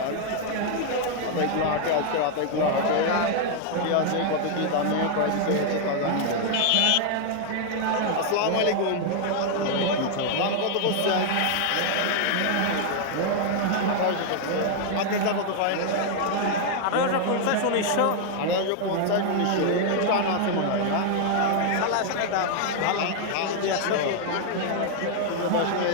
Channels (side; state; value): both; different; correlation 0.00